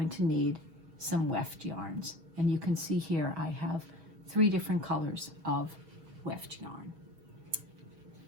to need some weft yarns, and you can see here I have 3 different colors of weft yarn.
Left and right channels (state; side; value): late; left; 6.2 ms